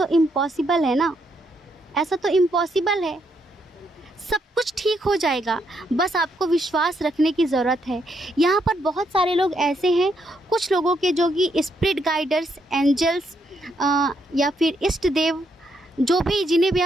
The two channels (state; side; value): normal; both; correlation 0.76